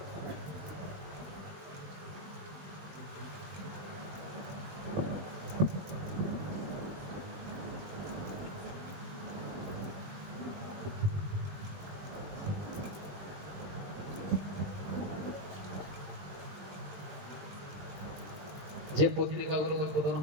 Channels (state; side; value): late; left; 20 ms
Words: যে পত্রিকাগুলো উদ্বোধন